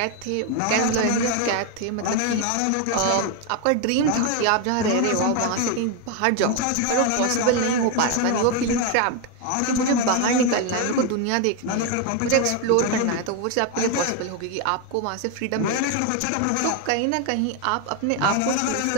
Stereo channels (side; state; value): both; different; correlation 0.01